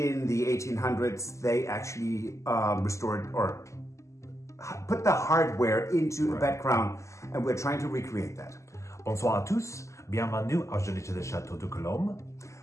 the 1800s they actually restored or put the hardware into a background, and we're trying to recreate that. Bonsoir à tous, bienvenue à Journey to the Chateau de Cologne.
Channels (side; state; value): right; late; 0.14 ms